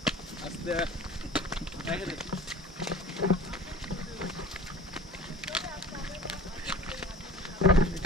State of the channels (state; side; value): normal; both; correlation 0.42